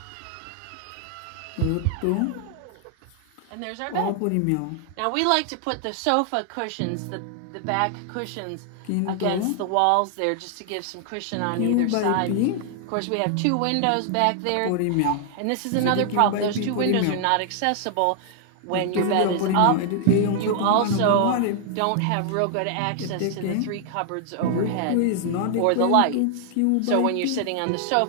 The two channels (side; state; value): both; different; correlation 0.00